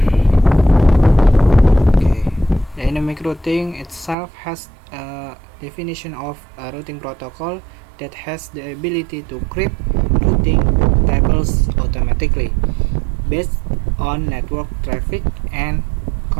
Dynamic routing itself has a definition of a routing protocol that has the ability to create routing tables automatically based on network traffic and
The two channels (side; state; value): left; drops out; at 4.2 s